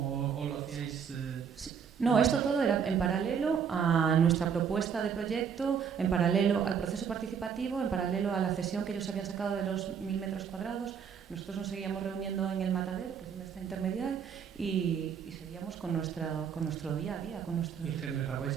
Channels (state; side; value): quieter; left; 7.1 dB